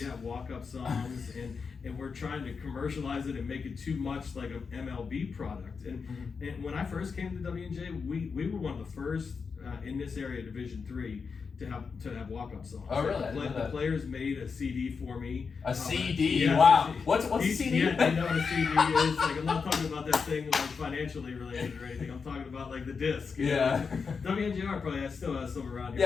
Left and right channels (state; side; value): quieter; right; 5.4 dB